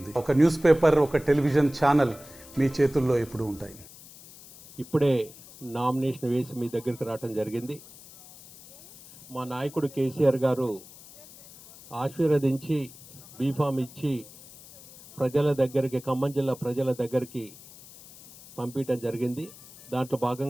ఒక న్యూస్ పేపర్, ఒక టెలివిజన్ ఛానల్ మీ చేతుల్లో ఎప్పుడూ ఉంటాయి. ఇప్పుడే నామినేషన్ వేసి మీ దగ్గరికి రావడం జరిగింది. మా నాయకుడు కేసీఆర్ గారు ఆశీర్వదించి బీఫామ్ ఇచ్చి ప్రజల దగ్గరికి, ఖమ్మం జిల్లా ప్రజల దగ్గరికి పంపించడం జరిగింది. దాంట్లో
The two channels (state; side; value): noise; left; hiss, 20 dB below the sound